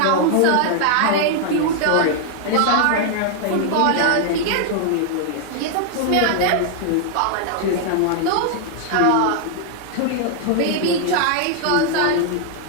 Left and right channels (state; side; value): different; both; correlation 0.00